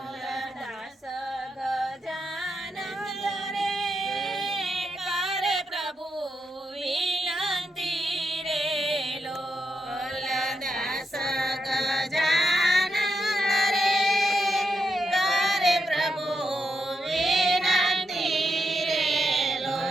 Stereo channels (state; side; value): normal; both; correlation 0.84